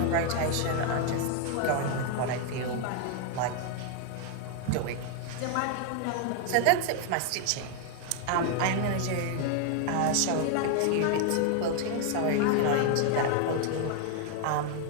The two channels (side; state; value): both; different; correlation 0.00